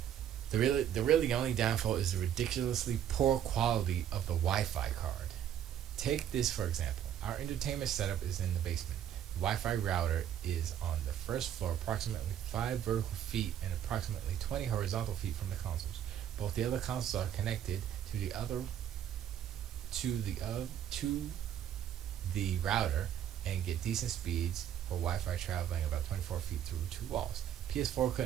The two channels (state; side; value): quieter; left; 10.1 dB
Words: The really only downfall is the ridiculously poor quality of the Wi-Fi card. Take this for example. Our entertainment setup is in the basement. The Wi-Fi router is on the first floor, approximately 5 vertical feet and approximately 20 horizontal feet from the consoles. Both the other consoles are connected to the router and get decent speeds for Wi-Fi traveling about 24 feet through 2 walls. PS4